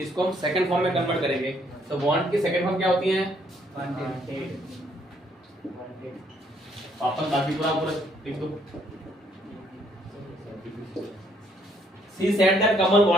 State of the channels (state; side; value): normal; both; correlation 0.68